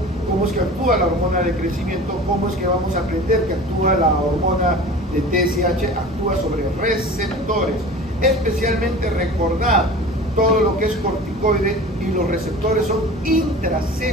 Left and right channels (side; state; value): both; normal; correlation 0.38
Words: cómo es que actúa la hormona de crecimiento, cómo es que vamos a aprender que actúa la hormona de TSH, actúa sobre receptores, especialmente recordar todo lo que es corticoide, y los receptores son